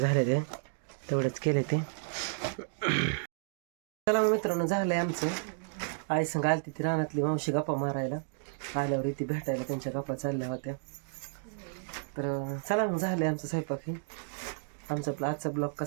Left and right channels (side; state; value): left; silent; digital silence